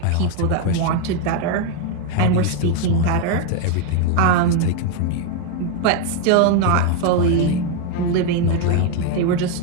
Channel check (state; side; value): different; both; correlation 0.01